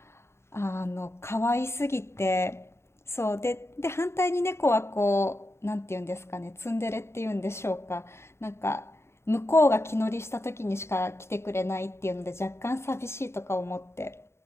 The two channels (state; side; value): late; right; 0.13 ms